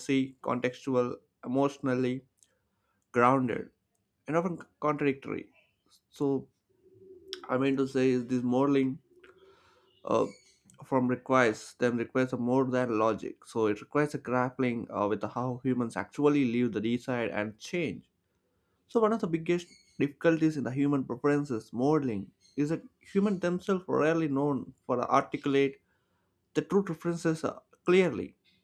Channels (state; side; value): identical; both; correlation 1.00